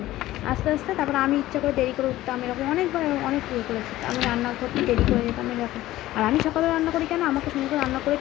আস্তে আস্তে। তারপরে আমি ইচ্ছা করে দেরি করে উঠতাম, এরকম অনেকবার অনেক ইয়ে করেছি, আমি রান্না করতে দেরি করে যেতাম এরকম। আর আমি সকালে রান্না করি কেন, আমাকে সুন্দর করে রান্না করে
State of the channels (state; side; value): quieter; right; 15.7 dB